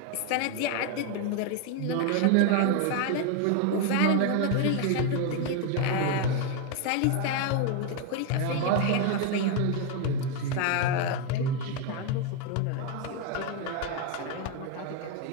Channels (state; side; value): different; both; correlation 0.01